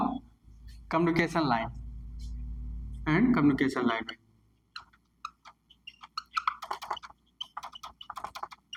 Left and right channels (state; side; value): identical; both; correlation 1.00